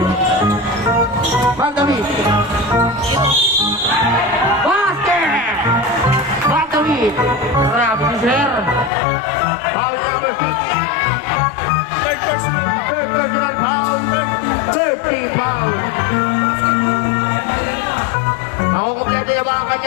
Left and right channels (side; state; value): right; drops out; at 8.9 s